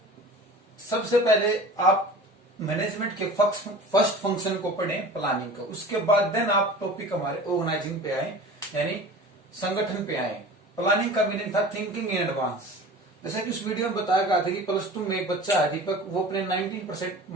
सबसे पहले आप मैनेजमेंट के फर्स्ट फंक्शन को पढ़ें, प्लानिंग का। उसके बाद देन आप टॉपिक हमारे ऑर्गेनाइजिंग पे आए, यानी संगठन पे आए। प्लानिंग का मीनिंग था थिंकिंग इन एडवांस। जैसा कि उस वीडियो में बताया गया था कि प्लस टू में एक बच्चा है दीपक, वो अपने 19%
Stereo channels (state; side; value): normal; both; correlation 0.39